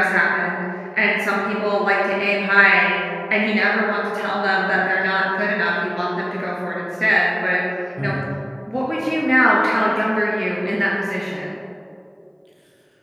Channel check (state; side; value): identical; both; correlation 1.00